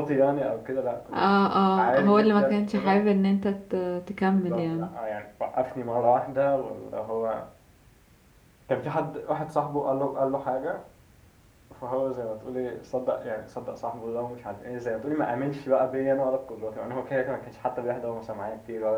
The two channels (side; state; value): both; identical; correlation 1.00